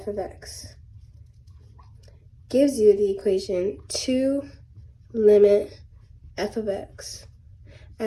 of x gives you the equation 2 limit f of x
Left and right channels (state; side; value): identical; both; correlation 1.00